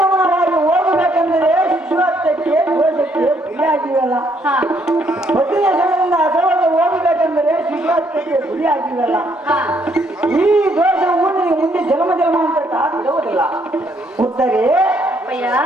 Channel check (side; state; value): both; normal; correlation 0.70